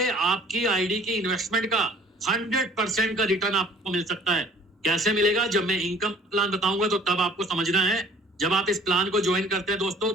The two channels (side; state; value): both; normal; correlation 0.53